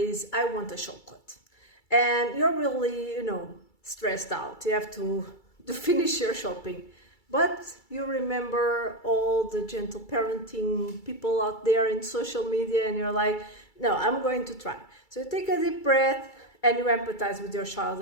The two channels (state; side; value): late; right; 2.3 ms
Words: I want a chocolate. And you're really, stressed out. You have to finish your shopping. But you remember all the gentle parenting people out there in social media, and you're like, no, I'm going to try. So you take a deep breath and you empathize with your child